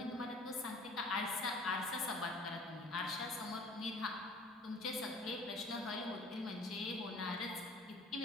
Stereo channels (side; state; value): both; normal; correlation 0.48